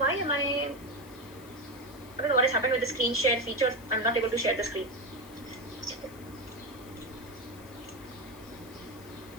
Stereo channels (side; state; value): left; noise; hiss, 22 dB below the sound